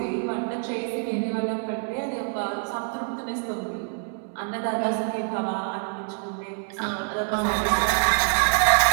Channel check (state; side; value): silent; left; 57 dB below the other